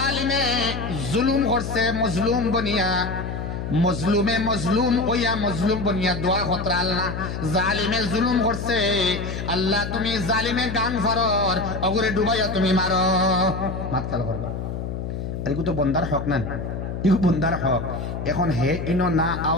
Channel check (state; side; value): noise; left; hum, 5 dB below the sound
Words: জুলুম করছে মজলুম বনিয়া মজলুমে মজলুম ওয়া মজলুম বনিয়া দোয়া খতরা আল্লাহ জালিমে জুলুম করছে আল্লাহ তুমি জালিমে গাং ফারর অগরে ডুবাইয়া তুমি মারো মাত খেয়াল করবা এরকম তো বন্দার হক না ইগো বন্দার হক এখন হে ইনো না